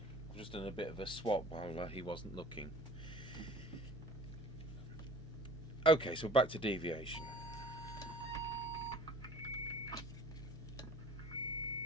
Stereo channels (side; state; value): both; normal; correlation 0.47